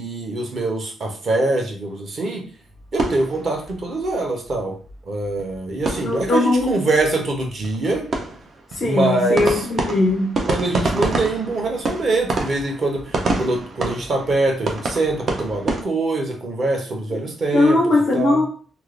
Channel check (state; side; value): normal; both; correlation 0.78